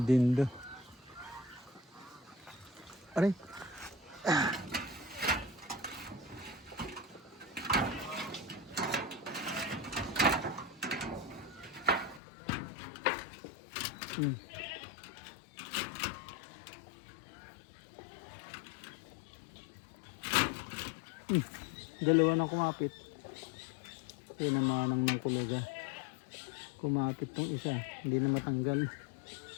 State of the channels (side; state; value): right; drops out; at 12.2 s